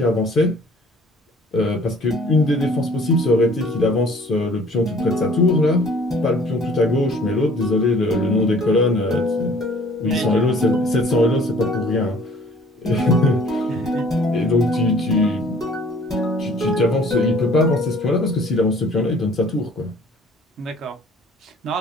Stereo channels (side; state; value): both; normal; correlation 0.53